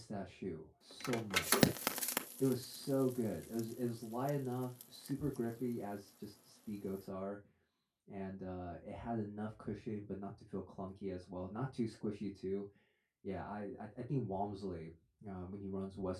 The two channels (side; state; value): both; identical; correlation 1.00